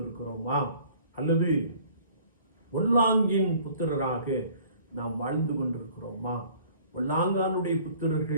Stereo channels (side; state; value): both; inverted; correlation -0.53